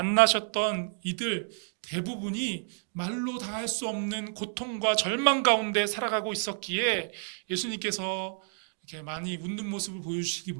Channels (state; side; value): silent; left; 58 dB below the other